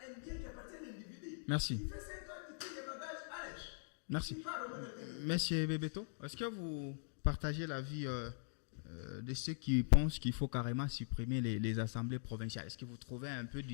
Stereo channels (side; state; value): right; silent; digital silence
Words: bien qui appartient à l'individu. Merci. Il fait 5 ans, il tire les bagages, allez. Merci. Monsieur Bebeto, est-ce que vous partagez l'avis de ceux qui pensent qu'il faut carrément supprimer les assemblées provinciales. Est-ce que vous trouvez un peu